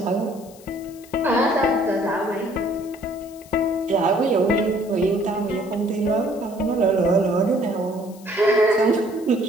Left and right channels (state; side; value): noise; left; hiss, 23 dB below the sound